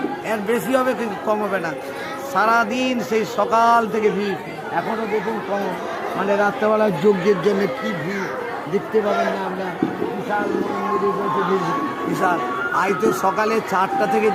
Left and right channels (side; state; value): both; identical; correlation 1.00